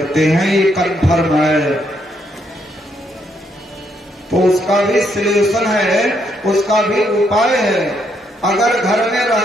हैं, ये कन्फर्म है। तो उसका भी सलूशन है, उसका भी उपाय है। अगर घर में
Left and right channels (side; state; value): both; normal; correlation 0.75